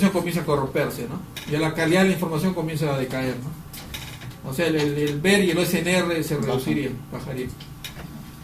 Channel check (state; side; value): identical; both; correlation 1.00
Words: comienza a corromperse, ¿no? Ya la calidad de la información comienza a decaer, ¿no? O sea, el ver y el OSNR se reduciría, bajaría.